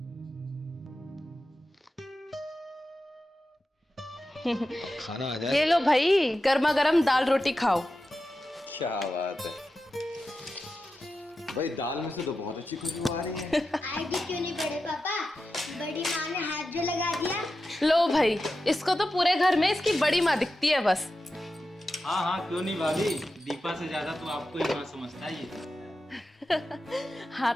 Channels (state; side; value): normal; both; correlation 0.91